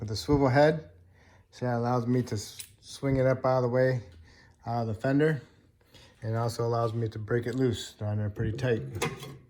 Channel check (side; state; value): both; identical; correlation 1.00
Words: a swivel head. So that allows me to swing it up out of the way, out of the fender. And it also allows me to break it loose down there pretty tight.